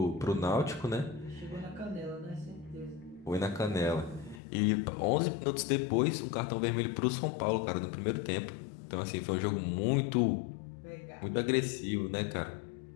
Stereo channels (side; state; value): right; drops out; at 4.4 s